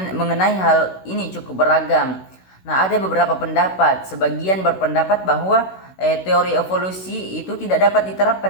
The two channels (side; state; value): right; late; 16 ms